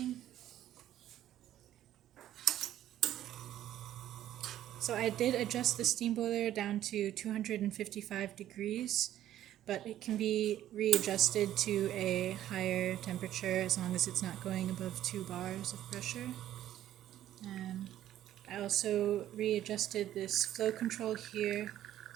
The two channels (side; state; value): left; quieter; 12.4 dB